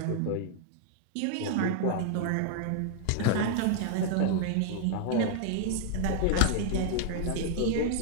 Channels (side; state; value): both; different; correlation -0.01